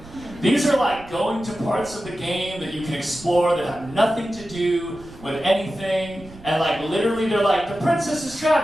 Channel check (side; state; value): right; noise; rumble, 20 dB below the sound